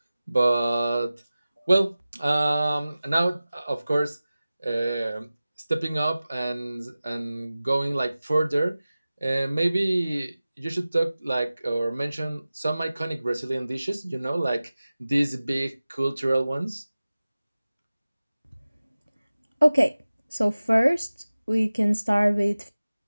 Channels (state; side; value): inverted; both; correlation -0.97